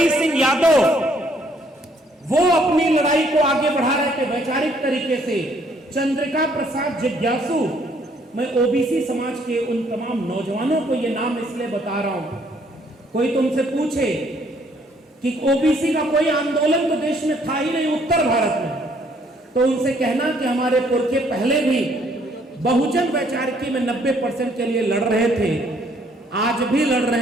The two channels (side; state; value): both; normal; correlation 0.65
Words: सिंह यादव वो अपनी लड़ाई को आगे बढ़ा रहे थे वैचारिक तरीके से। चंद्रिका प्रसाद जिज्ञासु, मैं ओबीसी समाज के उन तमाम नौजवानों को ये नाम इसलिए बता रहा हूं, कोई तुमसे पूछे कि ओबीसी का कोई आंदोलन तो देश में था ही नहीं उत्तर भारत में, तो उनसे कहना कि हमारे पुरखे पहले भी बहुजन वैचारिकी में 90% के लिए लड़ रहे थे, आज भी लड़